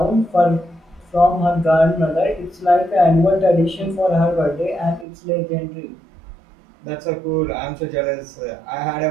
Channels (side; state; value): left; drops out; at 5.1 s